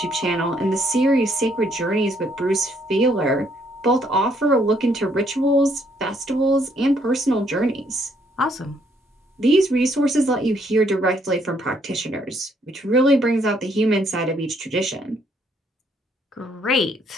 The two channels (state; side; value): normal; both; correlation 0.69